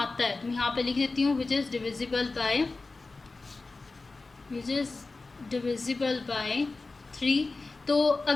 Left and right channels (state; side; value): quieter; right; 3.6 dB